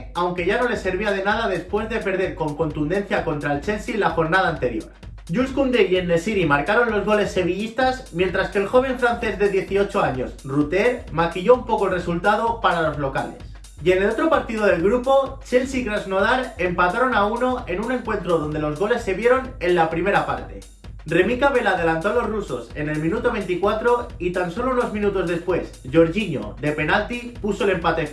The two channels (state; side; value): identical; both; correlation 1.00